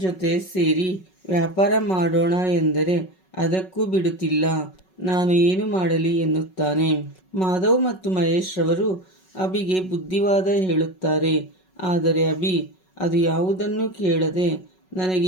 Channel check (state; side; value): late; right; 5.4 ms